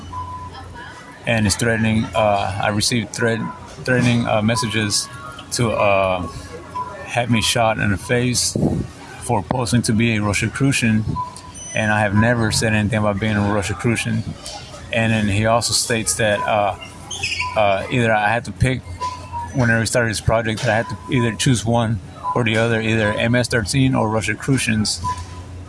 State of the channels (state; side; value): identical; both; correlation 1.00